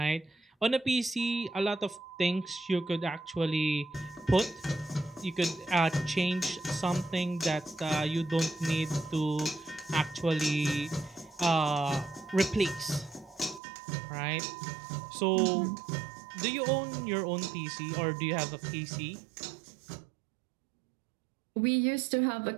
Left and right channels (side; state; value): left; drops out; at 13.6 s